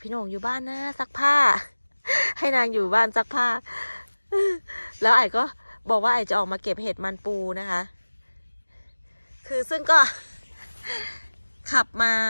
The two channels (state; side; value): inverted; both; correlation -1.00